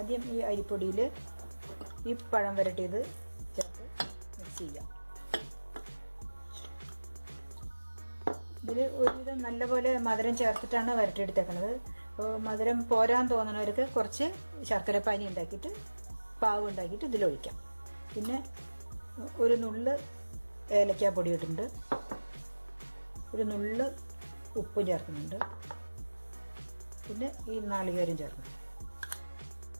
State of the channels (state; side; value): inverted; both; correlation -1.00